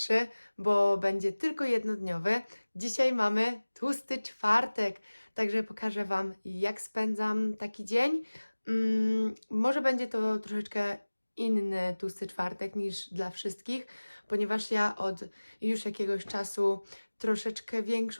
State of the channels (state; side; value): inverted; both; correlation -1.00